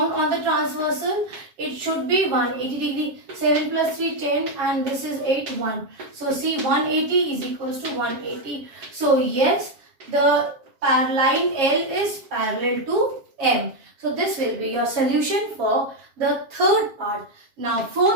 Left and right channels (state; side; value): late; left; 7.4 ms